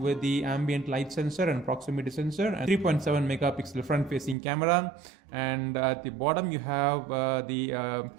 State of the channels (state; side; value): drops out; left; at 4.4 s